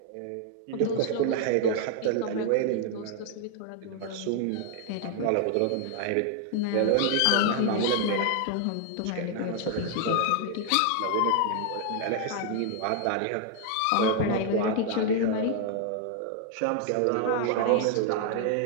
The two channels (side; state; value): both; different; correlation 0.00